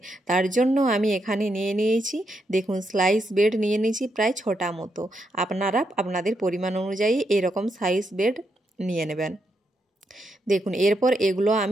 তার জন্য আমি এখানে নিয়ে নিয়েছি, দেখুন, স্লাইস ব্রেড নিয়ে নিয়েছি প্রায় 6টা মতো। আপনারা আপনাদের পরিমাণ অনুযায়ী এরকম সাইজ ব্রেড নিয়ে নেবেন। দেখুন, এরপর এগুলো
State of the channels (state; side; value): normal; both; correlation 0.81